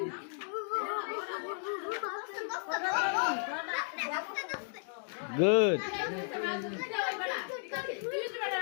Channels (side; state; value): right; silent; 55 dB below the other